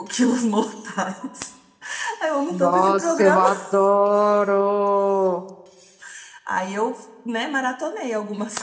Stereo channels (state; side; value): identical; both; correlation 1.00